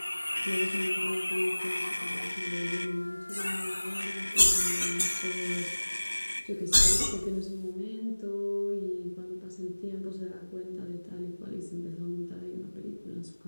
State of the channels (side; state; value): both; inverted; correlation -1.00